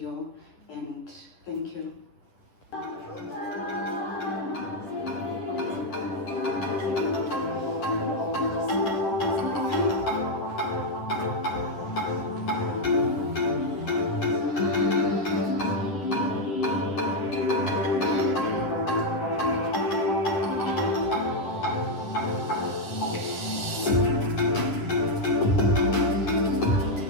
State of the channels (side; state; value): right; late; 11 ms